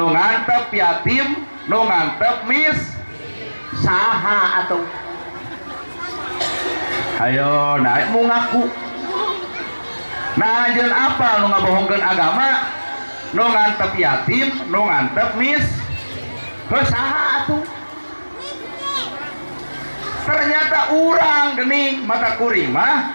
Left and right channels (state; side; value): inverted; both; correlation -1.00